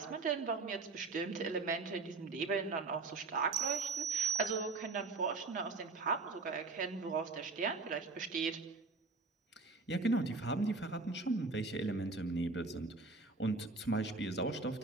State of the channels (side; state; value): left; quieter; 3.8 dB